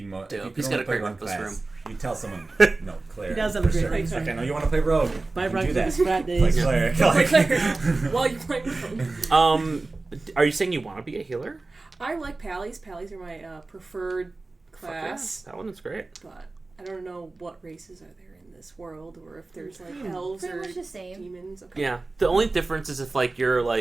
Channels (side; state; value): left; quieter; 3.4 dB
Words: most. Dope. He's got a great breakfast room. You tell someone, no, cleric. He does have a for great sure. breakfast Like, I room. know you want to play rogue. Buy You can do breakfast that. frat Play days. cleric. Play Like, cleric while you're playing with them. Are you saying you want to be a healer? I like pallies. Pallies are my preferred Fuck yeah, class. that one is great. But I don't know what races are there in this world, or if there's like elves Pretty or much the same. demons. Okay. Yeah, the only difference is if like you're